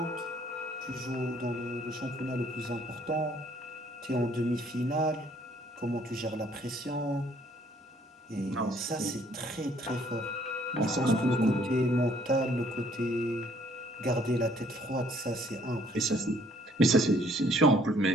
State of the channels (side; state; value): both; normal; correlation 0.62